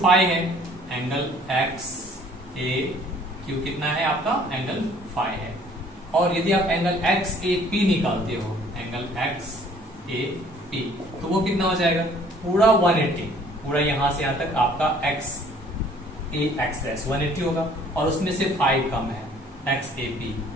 है। एंगल एक्स ए क्यू कितना है आपका? एंगल फाई है। और यदि आप एंगल एक्स ए पी निकालते हो, एंगल एक्स ए पी, तो वो कितना हो जाएगा? पूरा 180, पूरा यहां से यहां तक आपका एक्स ए एक्स डैश 180 होगा, और उसमें से 5 कम है, एक्स ए पी,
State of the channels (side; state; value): both; normal; correlation 0.57